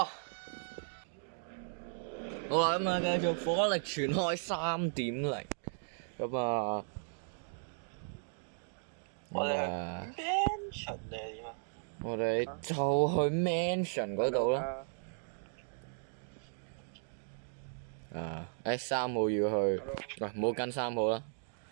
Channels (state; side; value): silent; left; digital silence